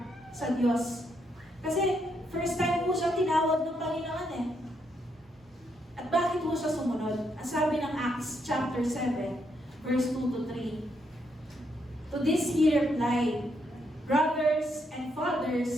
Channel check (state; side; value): normal; both; correlation 0.77